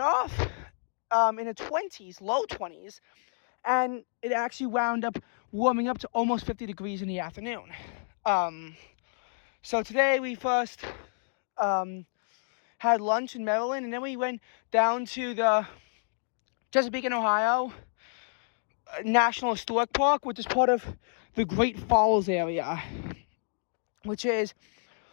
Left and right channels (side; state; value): right; silent; digital silence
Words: off in the 20s, low 20s, and it actually wound up warming up to almost 50 degrees in the afternoon. So today we first had lunch in Maryland, and then we went down to the Chesapeake, Ohio National Historic Park, which is part of the Great Falls area, which is